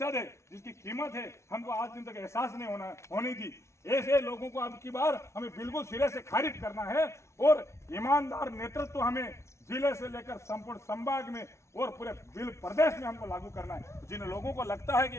है, जिसकी कीमत है, हमको आज दिन तक एहसास नहीं होनी थी। ऐसे लोगों को अब की बार हमें बिल्कुल सिरे से खारिज करना है और ईमानदार नेतृत्व हमें जिले से लेकर संपूर्ण संभाग में और पूरे बिल प्रदेश में हमको लागू करना है। जिन लोगों को लगता है कि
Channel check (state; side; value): late; right; 0.13 ms